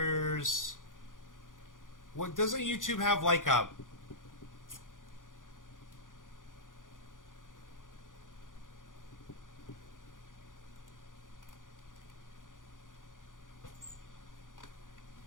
What, doesn't YouTube have like a...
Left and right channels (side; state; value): right; late; 0.88 ms